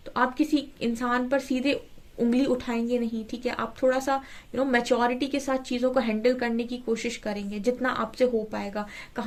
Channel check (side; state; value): both; identical; correlation 1.00